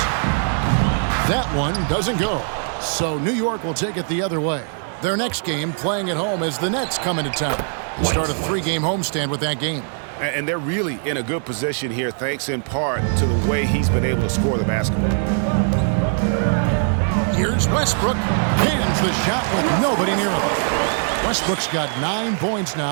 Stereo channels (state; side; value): silent; left; digital silence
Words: That one doesn't go. So New York will take it the other way. Their next game playing at home as the Nets come into town. Start a 3-game homestand with that game. And they're really in a good position here, thanks in part to the way he's been able to score the basketball. Here's Westbrook. Hands the shot with nobody near him. Westbrook's got 9 points